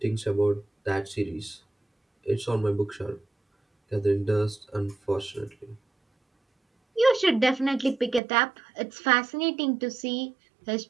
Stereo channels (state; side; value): drops out; left; at 8.2 s